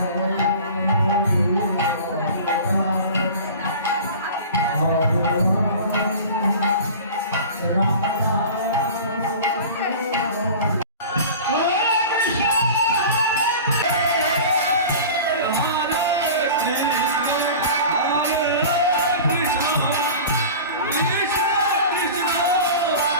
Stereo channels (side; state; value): both; inverted; correlation -0.37